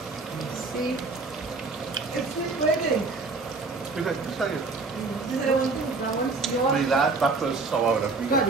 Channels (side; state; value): left; quieter; 3.9 dB